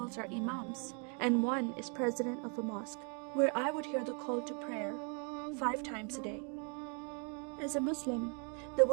are imams, and 1 is president of a mosque, where I would hear the call to prayer 5 times a day. As a Muslim, the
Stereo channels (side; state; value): left; quieter; 39.1 dB